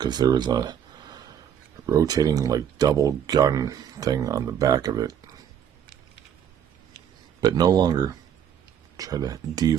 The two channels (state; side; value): quieter; left; 8.9 dB